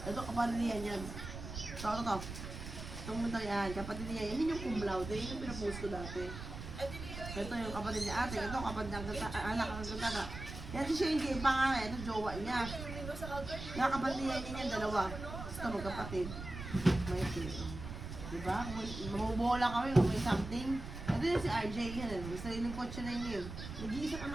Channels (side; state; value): right; noise; rumble, 9 dB below the sound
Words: Ito, kapatid niya yan. Ito. Itong mundo yan, kapatid niya yan. Yun yung cum laude, yun yung pinapost ko dati. Ito yung kapatid niya ate, ito kapatid niya anak ang ganda. Yan si Shinji, yung pangalan, ito jowa niya. Yung kapatid niya yan, dalawa. Ito magkapatid. May ito. Diba? Kung mabubola kami, kung may something. Ito yung si RJ, yan. May sariling kotse na yun. Nag-iisang